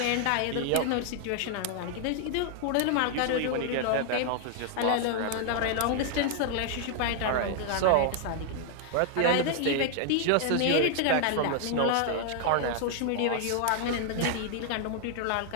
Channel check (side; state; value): both; different; correlation 0.00